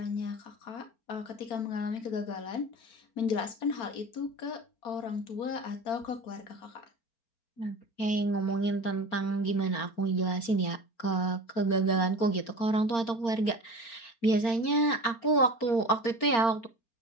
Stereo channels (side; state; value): right; late; 4.4 ms